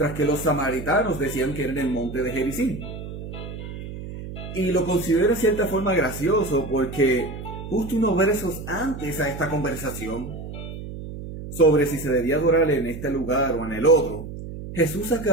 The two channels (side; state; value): right; noise; hum, 10 dB below the sound